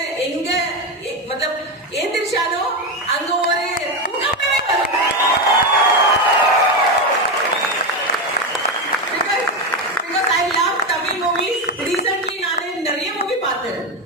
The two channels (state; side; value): normal; both; correlation 0.12